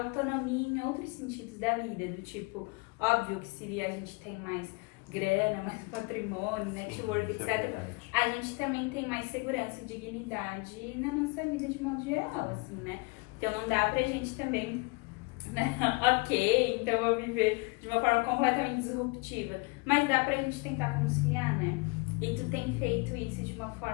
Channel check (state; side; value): quieter; right; 28.2 dB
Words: em outros sentidos da vida, do tipo, óbvio que se a gente tem mais grana, mais patrimônio, network, etc., a gente também tem mais segurança e dignidade na nossa vida de modo geral, assim, né? Então não dá pra gente também, né? Ok, então eu vou viver de uma forma completamente disruptiva, mas dá pra gente tentar conciliar, né? E tu tem feito isso de uma